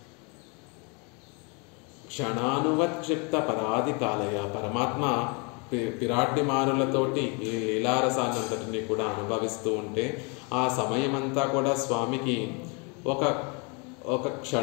క్షణానువత్క్షిప్త పరాధికాలయ. పరమాత్మ పిరాడ్డిమారులతోటి ఈ లీలారసాన్నంతటిని కూడా అనుభవిస్తూ ఉంటే ఆ సమయమంతా కూడా స్వామికి ఒక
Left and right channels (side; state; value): right; quieter; 32.6 dB